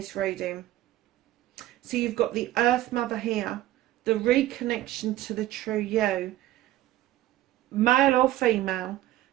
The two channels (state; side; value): quieter; left; 15.0 dB